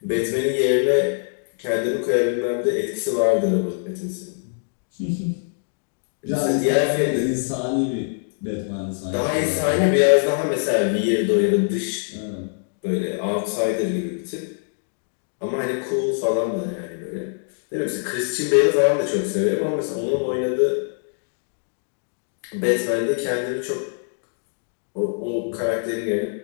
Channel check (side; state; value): right; silent; digital silence